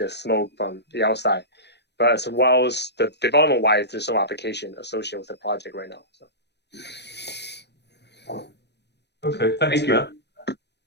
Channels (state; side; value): late; right; 0.50 ms